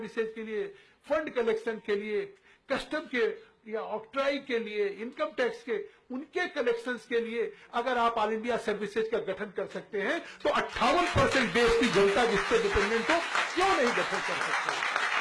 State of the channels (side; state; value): both; identical; correlation 1.00